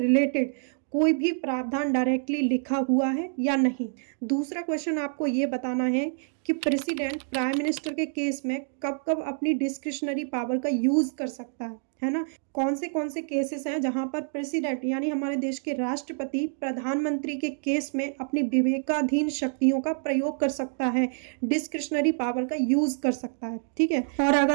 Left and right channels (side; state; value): left; silent; 60 dB below the other